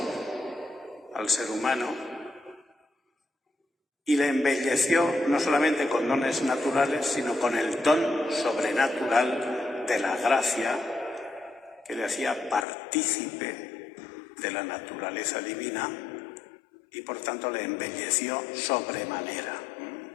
al ser humano y le embelleció no solamente con dones naturales, sino con el don sobrenatural de la gracia que le hacía partícipe de la naturaleza divina y por tanto le embelleció sobremanera.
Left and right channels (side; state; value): right; drops out; at 12.7 s